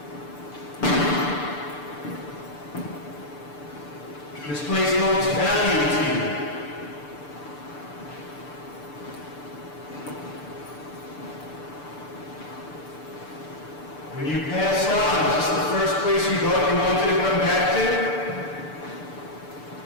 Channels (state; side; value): late; right; 6.8 ms